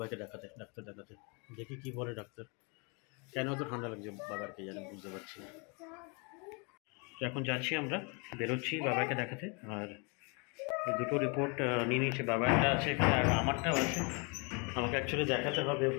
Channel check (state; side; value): quieter; right; 32.7 dB